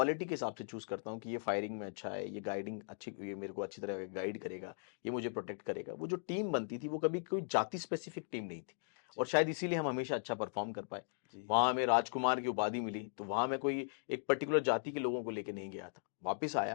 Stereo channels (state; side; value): silent; right; digital silence